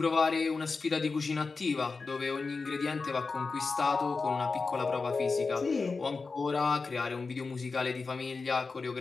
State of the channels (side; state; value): right; quieter; 4.3 dB